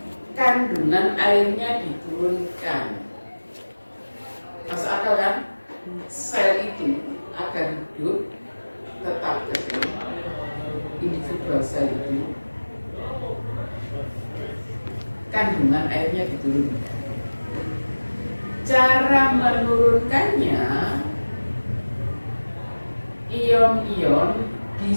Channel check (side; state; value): both; inverted; correlation -1.00